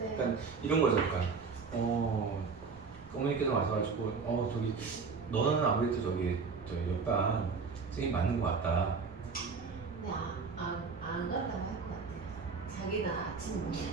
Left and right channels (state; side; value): quieter; left; 5.0 dB